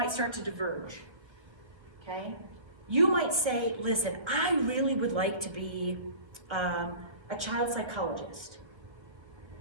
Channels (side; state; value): left; late; 1.2 ms